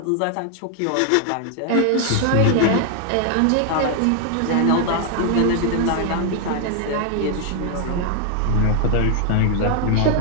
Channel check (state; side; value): different; both; correlation 0.00